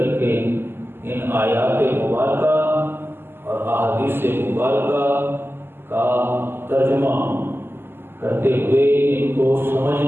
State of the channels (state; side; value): late; left; 0.11 ms